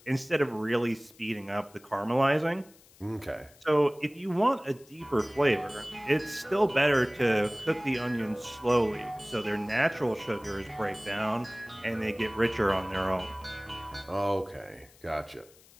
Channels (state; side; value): noise; left; hiss, 26 dB below the sound